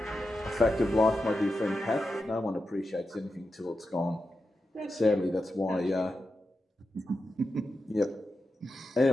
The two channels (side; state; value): both; normal; correlation 0.90